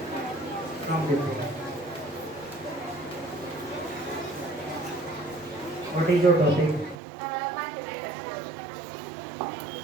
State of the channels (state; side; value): drops out; left; at 7.0 s